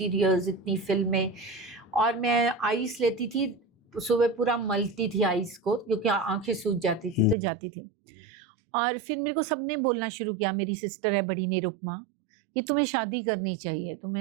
इतनी फिल्में, और मैं आइस लेती थी सुबह पूरा मलती थी आइस को, क्योंकि आंखें सूज जाती थी तो जाती थी। और फिर मेरे को सबने बोलना शुरू किया, मेरी सिस्टर है बड़ी निरुपमा, कि तुम्हें शादी करनी चाहिए,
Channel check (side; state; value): left; drops out; at 7.4 s